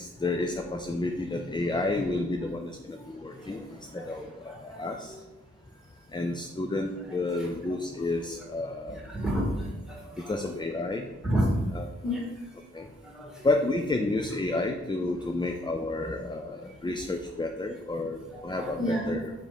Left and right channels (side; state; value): both; normal; correlation 0.68